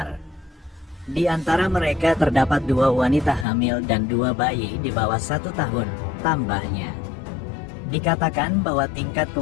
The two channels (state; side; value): drops out; right; at 3.5 s